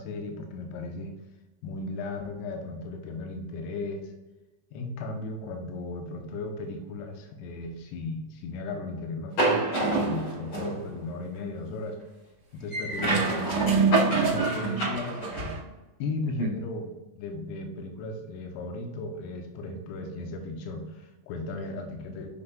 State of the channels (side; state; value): right; late; 20 ms